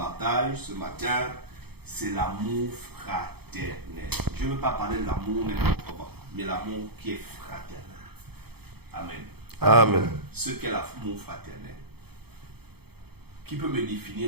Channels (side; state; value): left; late; 0.96 ms